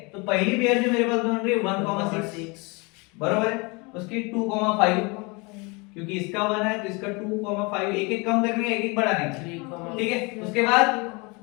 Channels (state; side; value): quieter; right; 28.3 dB